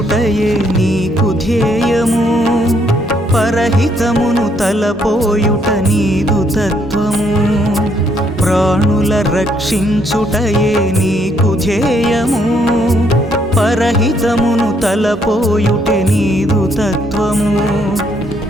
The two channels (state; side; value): normal; both; correlation 0.71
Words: నీకు ధ్యేయము పరహితమును తలపోయుట నీదు తత్వము ప్రాణుల రక్షించుటయే నీకు ధ్యేయము పరహితమును తలపోయుటే నీదు తత్వము